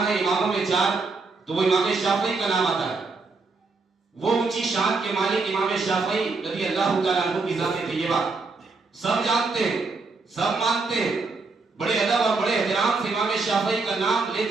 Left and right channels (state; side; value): quieter; left; 4.0 dB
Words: ہے اماموں میں 4 تو وہ امام شافعی کا نام آتا ہے۔ وہ اونچی شان کے مالک امام شافعی رضی اللہ تعالیٰ عنہ کی ذات طیبہ سب جانتے ہیں، سب مانتے ہیں، بڑے ادب اور بڑے احترام سے امام شافعی کا نام